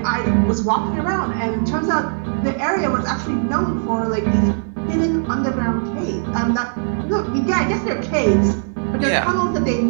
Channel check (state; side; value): silent; left; 62 dB below the other